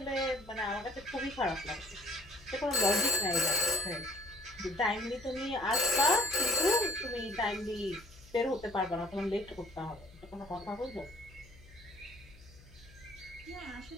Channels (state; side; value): noise; left; hum, 22 dB below the sound